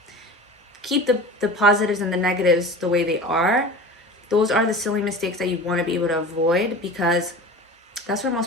Keep the positives and the negatives the way they are. Those are the silly mistakes that you want to be able to avoid, because that's where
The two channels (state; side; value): normal; both; correlation 0.35